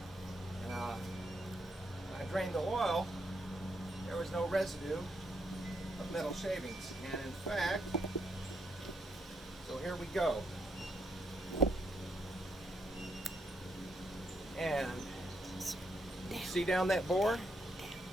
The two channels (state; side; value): normal; both; correlation 0.77